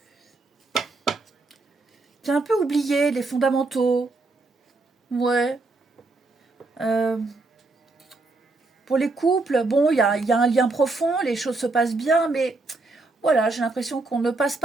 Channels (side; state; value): left; quieter; 3.4 dB